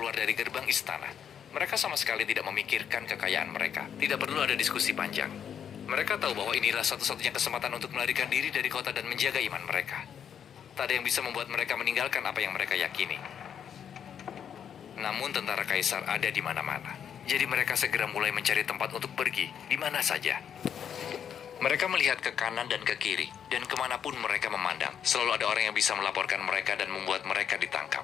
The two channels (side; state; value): right; quieter; 8.4 dB